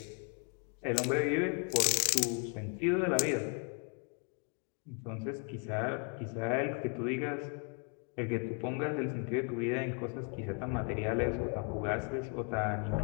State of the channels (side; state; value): right; quieter; 36.6 dB